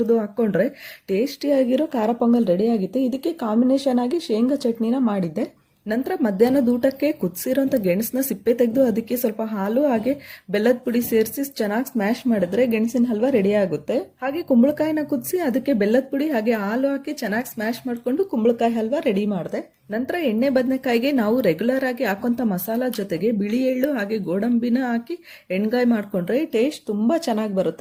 ಹಾಕೊಂಡ್ರೆ ಟೇಸ್ಟಿಯಾಗಿರೋ ಖಾರ ಪೊಂಗಲ್ ರೆಡಿ ಆಗುತ್ತೆ. ಇದಕ್ಕೆ ಕಾಂಬಿನೇಷನ್ ಆಗಿ ಶೇಂಗಾ ಚಟ್ನಿನ ಮಾಡಿದ್ದೆ. ನಂತರ ಮಧ್ಯಾಹ್ನದ ಊಟಕ್ಕೆ ಕುದಿಸಿರೋಂಥ ಗೆಣಸನ್ನ ಸಿಪ್ಪೆ ತೆಗೆದು ಅದಕ್ಕೆ ಸ್ವಲ್ಪ ಹಾಲು ಹಾಗೆ ಬೆಲ್ಲದ ಪುಡಿ ಸೇರಿಸಿ ಚೆನ್ನಾಗಿ ಸ್ಮ್ಯಾಶ್ ಮಾಡಿದ್ರೆ ಗೆಣಸಿನ ಹಲ್ವಾ ರೆಡಿ ಆಗುತ್ತೆ. ಹಾಗೆ ಕುಂಬಳಕಾಯಿನ ಕುದಿಸಿ ಅದಕ್ಕೆ ಬೆಲ್ಲದ ಪುಡಿ ಹಾಗೆ ಹಾಲು ಹಾಕಿ ಚೆನ್ನಾಗಿ ಸ್ಮ್ಯಾಶ್ ಮಾಡಿಕೊಂಡು ಕುಂಬಳಕಾಯಿ ಹಲ್ವಾ ರೆಡಿ ಮಾಡಿದೆ. ನಂತರ ಎಣ್ಣೆ ಬದನೆಕಾಯಿಗೆ ನಾವು ರೆಗ್ಯುಲರ್ ಆಗಿ ಹಾಕೋಂಥ ಮಸಾಲಾ ಜೊತೆಗೆ ಬಿಳಿ ಎಳ್ಳು ಹಾಗೆ ಗೋಡಂಬಿನ ಹಾಕಿ ಎಣ್ಗಾಯಿ ಮಾಡ್ಕೊಂಡ್ರೆ ಟೇಸ್ಟ್ ತುಂಬಾ ಚೆನ್ನಾಗಿ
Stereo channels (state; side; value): identical; both; correlation 1.00